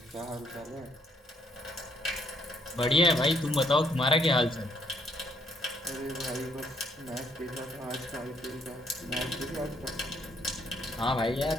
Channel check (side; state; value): both; normal; correlation 0.68